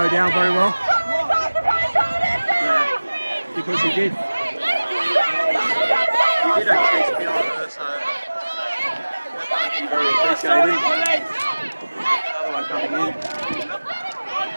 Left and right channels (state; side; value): inverted; both; correlation -1.00